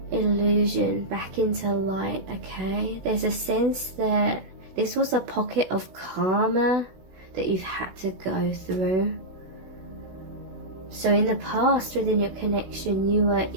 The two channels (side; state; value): left; late; 16 ms